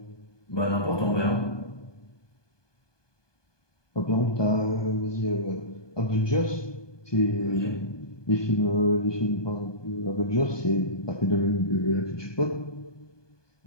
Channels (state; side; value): late; right; 1.2 ms